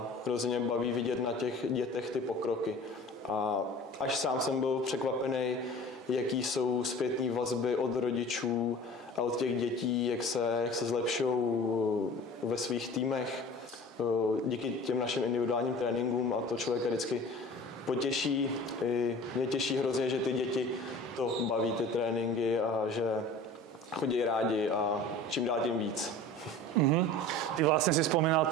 hrozně baví vidět na těch dětech ty pokroky. A až sám jsem byl překvapený, jaký jsou zpětné vazby od rodičů a od těch dětí, jak se zlepšují ve svých týmech díky těm našim individuálním tréninkům a to člověka vždycky potěší. I mě těší hrozně, že ty děti to baví, ty tréninky a že chodí rádi a čím dál tím víc. Ty vlastne si spomínal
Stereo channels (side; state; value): both; normal; correlation 0.41